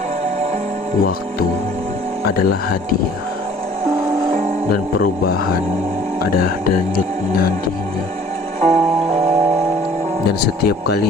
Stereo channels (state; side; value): normal; both; correlation 0.52